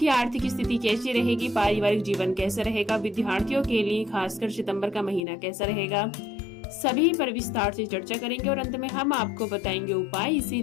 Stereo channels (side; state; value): right; drops out; at 5.2 s